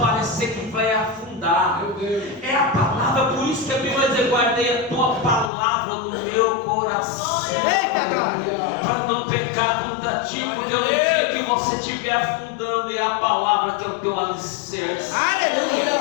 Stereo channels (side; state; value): right; drops out; at 5.5 s